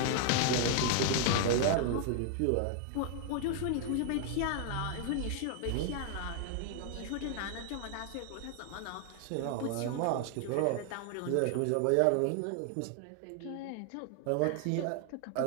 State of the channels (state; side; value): different; both; correlation 0.00